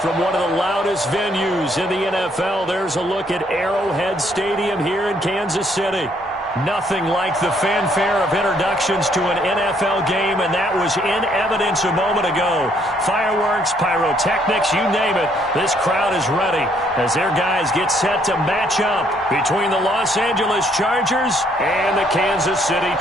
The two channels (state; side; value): normal; both; correlation 0.68